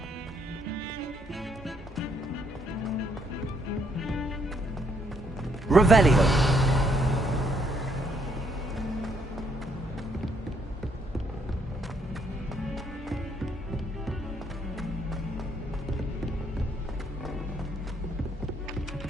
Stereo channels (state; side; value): normal; both; correlation 0.71